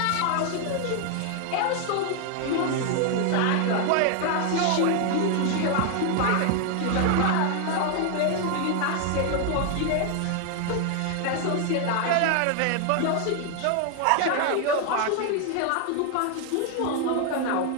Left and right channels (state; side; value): different; both; correlation 0.00